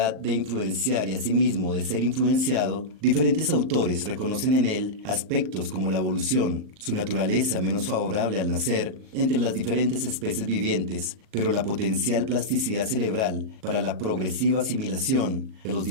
de influenciar y asimismo de ser influenciado, diferentes autores reconocen en él aspectos como la evolución, su naturaleza menos favorable al nacer entre las diferentes especies vivientes, pero la potencial plasticidad cerebral para la progresiva asimilación de los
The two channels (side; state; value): left; late; 38 ms